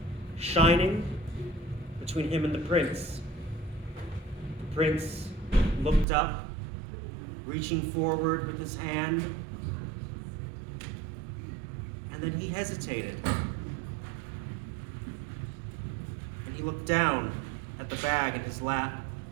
shining between him and the prince. The prince looked up, reaching forward with his hand, and then he hesitated. And he looked down at the bag in his lap,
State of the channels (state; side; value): drops out; left; at 6.1 s